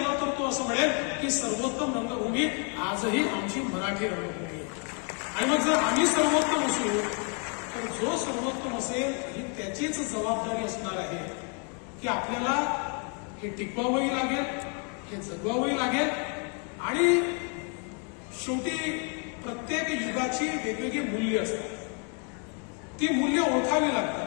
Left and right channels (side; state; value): right; quieter; 38.9 dB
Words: तर तो असं म्हणेल की सर्वोत्तम रंगभूमी आजही आमची मराठी रंगभूमी. आणि मग जर आम्ही सर्वोत्तम असू तर जो सर्वोत्तम असेल ही त्याचीच जबाबदारी असणार आहे की आपल्याला हे टिकवावंही लागेल, हे जगवावंही लागेल. आणि शेवटी प्रत्येक युगाची वेगवेगळी मूल्य असतात. ती मूल्य ओळखावी